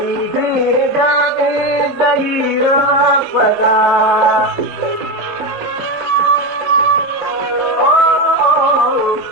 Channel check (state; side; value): normal; both; correlation 0.15